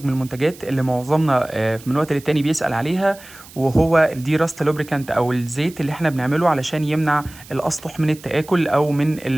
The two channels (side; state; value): right; noise; hiss, 20 dB below the sound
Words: من المنتجات اللي معظمنا من وقت للتاني بيسأل عليها، وهو الدي راست لوبريكانت أو الزيت اللي احنا بنعمله علشان يمنع الأسطح من التآكل أو من